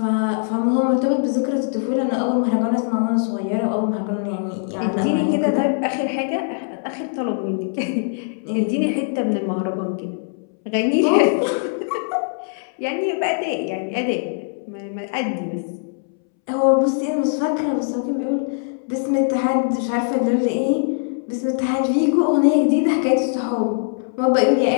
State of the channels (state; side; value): silent; right; 64 dB below the other